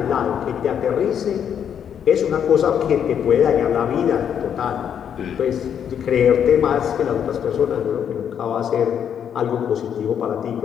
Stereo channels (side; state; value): right; quieter; 8.5 dB